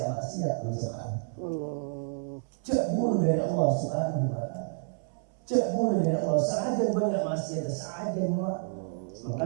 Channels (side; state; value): left; silent; 58 dB below the other